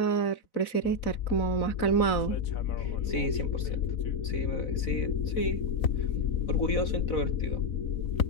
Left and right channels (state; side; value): late; right; 4.0 ms